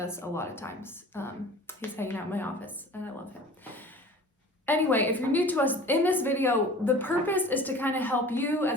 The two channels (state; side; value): normal; both; correlation 0.43